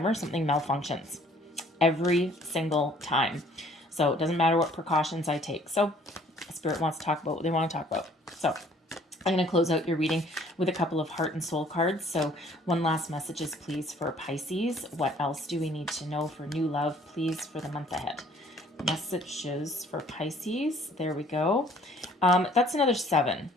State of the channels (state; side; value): normal; both; correlation 0.57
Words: something malfunctions. Every single time. So it doesn't matter what precautions I take. So Spirit wants to talk about what they want to talk about. So I'm going to close out your reading with a couple of heart and soul cards. So one last messages, please, for Pisces. What else do we need to know for new love, please, for the month ahead? Messages for Pisces. There we go. That's another 7,